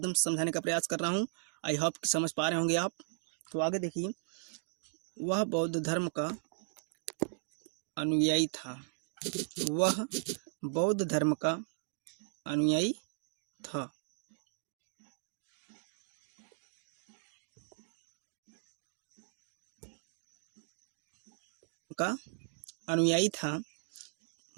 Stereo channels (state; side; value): silent; left; digital silence